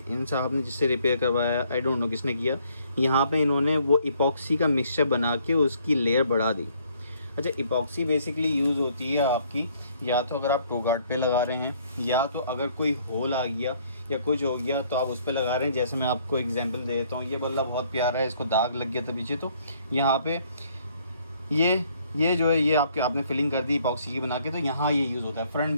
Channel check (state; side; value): inverted; both; correlation -0.64